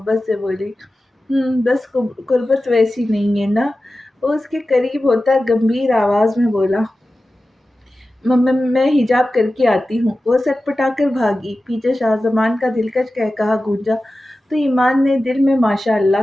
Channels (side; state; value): both; normal; correlation 0.94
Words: سے بولی۔ بس قربت ویسی نہیں ہے نا؟ وہ اس کے قریب ہوتا گمبھیر آواز میں بولا۔ میں حجاب کر کے آتی ہوں۔ وہ سٹ پٹا کر بھاگی۔ پیچھے شاہ زمان کا دلکش قہقہا گونجا تو ایمان نے دل میں ماشاء